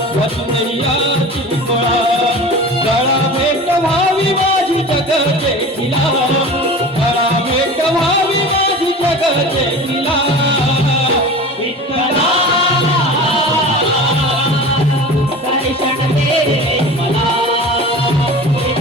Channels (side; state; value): both; normal; correlation 0.36